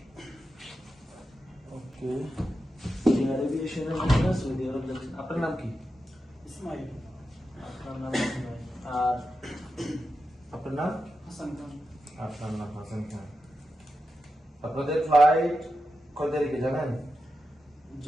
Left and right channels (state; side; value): normal; both; correlation 0.89